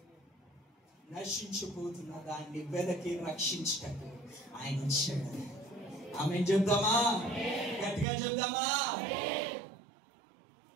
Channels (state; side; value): drops out; left; at 8.1 s